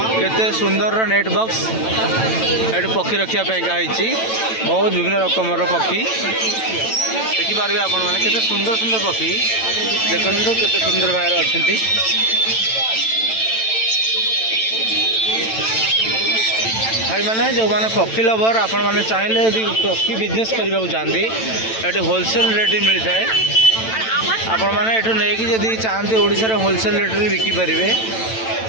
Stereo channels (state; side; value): late; right; 9.0 ms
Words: केते सुंदर नेट बॉक्स ये पक्षी रखापी बहुत विभिन्न रकम पक्षी देखिपारे आपण मैंने केते सुंदर सुंदर पक्षी देखो केते सुंदर भाव अच्छा भाई मैंने जो मैंने पक्षी लवर आपण मैंने चाहिए यदि पक्षी बिजनेस करने को चाहती ये होलसेल रेट मिलता है आपण मैंने ये नहीं जदि चाहते ओडिशा होलसेल रेट में बिकिपारे